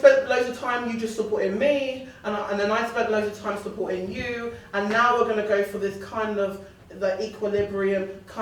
loads of time you just supporting me, and then I spent loads of time supporting you, and now we're going to go for this kind of the equilibrium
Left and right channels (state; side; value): identical; both; correlation 1.00